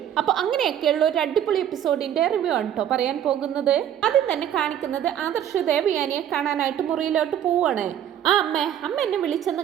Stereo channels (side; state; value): left; quieter; 10.3 dB